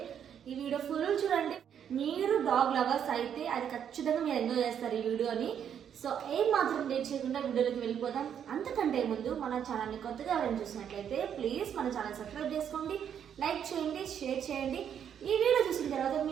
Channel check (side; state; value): left; quieter; 8.7 dB